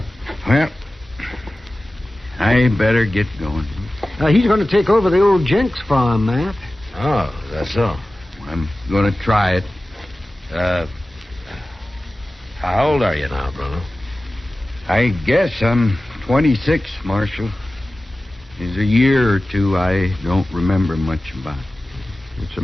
Well, I better get going. He's going to take over the old Jenks farm, Matt. Oh, that's so. I'm going to try it. How old are you now, Bruno? I guess I'm 26, Marshal. There's a year or two I don't remember much about. It's a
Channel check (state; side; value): normal; both; correlation 0.96